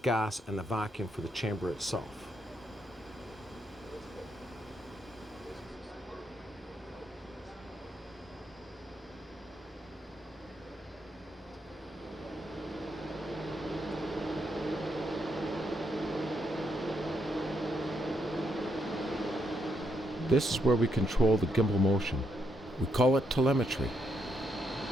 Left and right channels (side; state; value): both; normal; correlation 0.78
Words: and the vacuum for the chamber itself. This is where we control the gimbal motion. We call it telemetry.